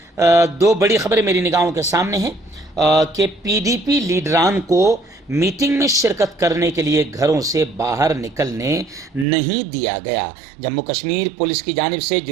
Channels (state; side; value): drops out; left; at 9.2 s